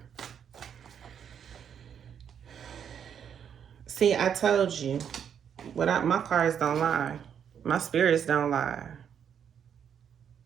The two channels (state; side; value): quieter; left; 8.2 dB